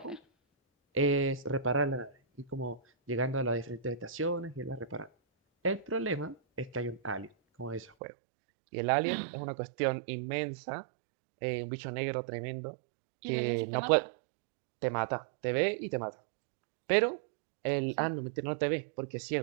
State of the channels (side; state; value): left; drops out; at 7.9 s